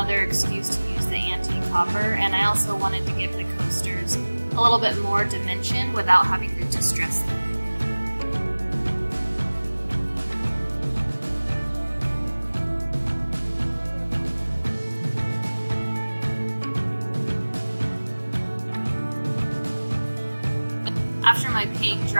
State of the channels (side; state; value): both; inverted; correlation -1.00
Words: excuse to use the antique copper, and I also wanted to give the coasters a little bit more dimension without having to distress them. After my paint